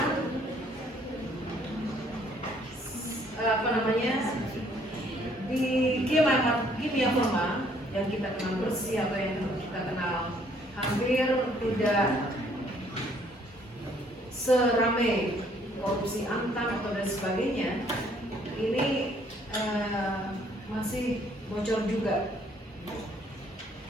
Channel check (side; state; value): both; normal; correlation 0.63